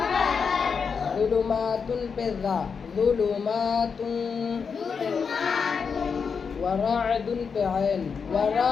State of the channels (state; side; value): quieter; right; 5.9 dB